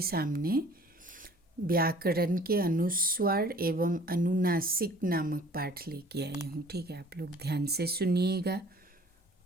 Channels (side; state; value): both; normal; correlation 0.52